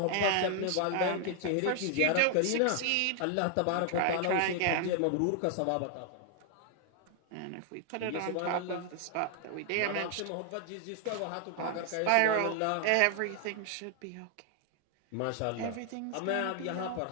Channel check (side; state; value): both; different; correlation 0.00